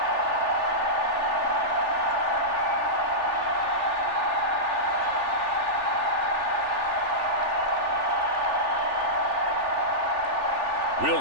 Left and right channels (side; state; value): left; late; 3.4 ms